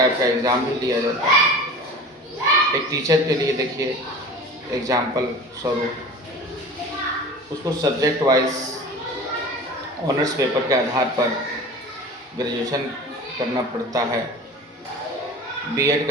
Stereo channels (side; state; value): both; normal; correlation 0.37